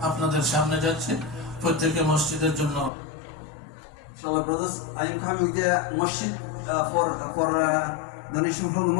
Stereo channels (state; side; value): drops out; right; at 2.9 s